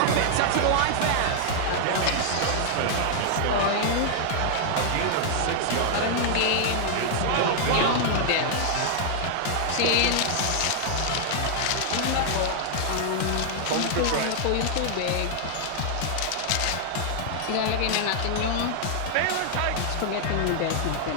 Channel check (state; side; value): different; both; correlation -0.01